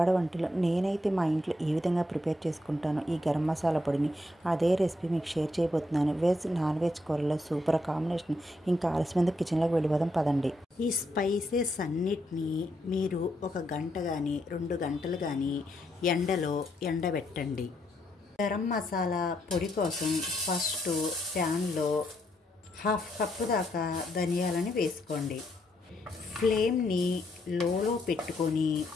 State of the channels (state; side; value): normal; both; correlation 0.77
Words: వంటలు. నేనైతే మా ఇంట్లో ఈ విధంగా ప్రిపేర్ చేసుకుంటాను ఈ గరం మసాలా పొడిని. అదే రెసిపీ మీకు షేర్ చేయబోతున్నాను. వెజ్ నాన్ వెజ్ కూరలో సూపర్ కాంబినేషన్. ఇంకా ఆలస్యమైన కిచెన్లోకి వెళ్ళిపోదాం పదండి. ఈ స్పైసెస్ అన్నిటినీ మీరు 1 గంట కానీ 2 గంటలు కానీ ఎండలో ఎండబెట్టండి. గరం మసాలా పొడి కోసం ఫస్ట్ ప్యాన్లో 1/2 కప్పు దాకా ధనియాలని వేసుకోండి. ఫ్లేమ్ని లోలో పెట్టుకొని